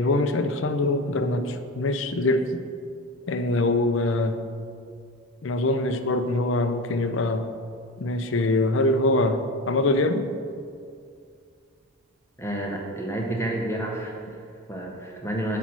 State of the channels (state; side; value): normal; both; correlation 0.27